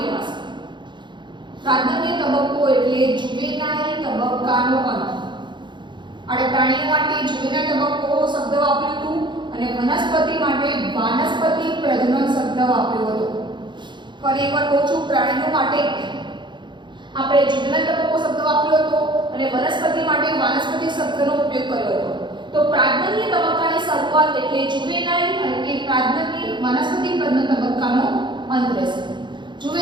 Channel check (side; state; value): left; late; 0.23 ms